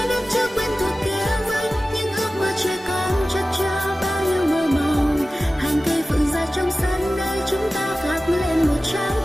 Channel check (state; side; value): normal; both; correlation 0.96